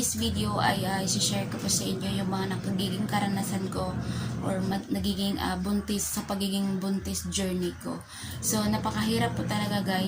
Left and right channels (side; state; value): both; identical; correlation 1.00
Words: video ay isi-share ko po sa inyo yung mga nagiging karanasan ko or nagiging buntis sa pagiging buntis journey ko. So napakahirap po talaga